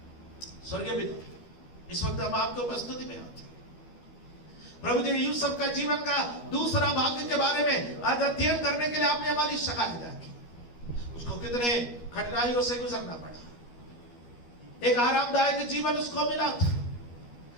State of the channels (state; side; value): late; right; 12 ms